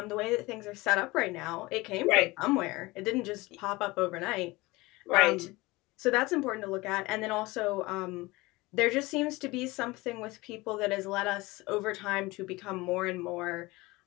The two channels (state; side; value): quieter; right; 21.7 dB